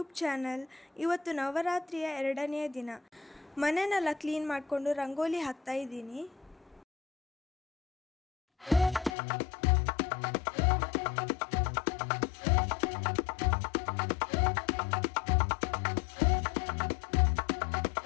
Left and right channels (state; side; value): drops out; right; at 9.2 s